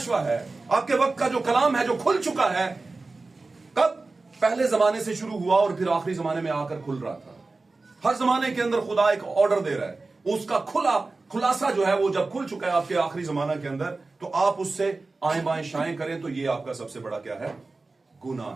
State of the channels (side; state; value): left; quieter; 3.6 dB